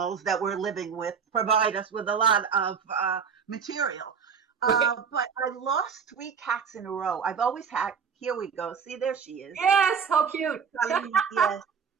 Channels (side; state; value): left; quieter; 6.4 dB